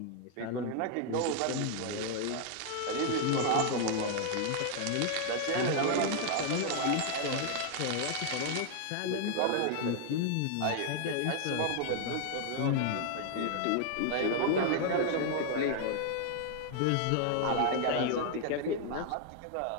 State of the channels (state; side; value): different; both; correlation 0.00